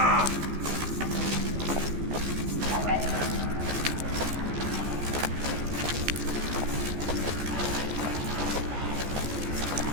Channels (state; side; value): late; left; 14 ms